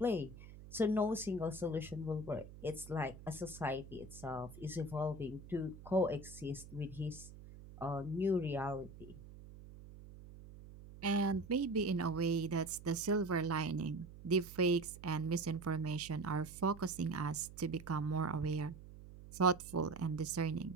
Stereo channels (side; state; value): right; noise; hum, 16 dB below the sound